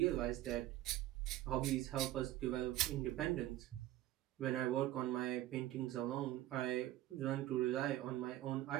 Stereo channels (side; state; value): left; quieter; 14.6 dB